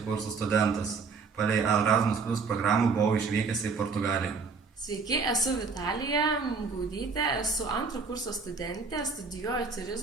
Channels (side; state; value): left; quieter; 4.9 dB